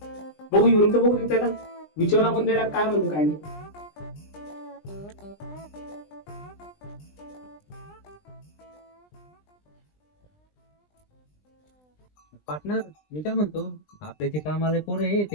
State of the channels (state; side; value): late; right; 20 ms